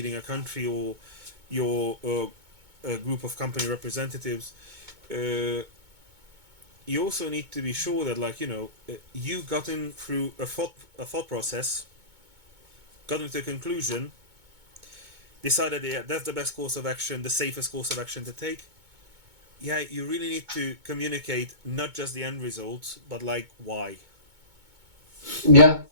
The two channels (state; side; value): late; left; 2.2 ms